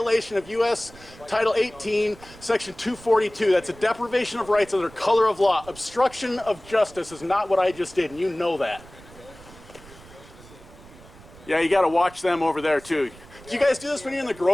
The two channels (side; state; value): right; noise; rumble, 21 dB below the sound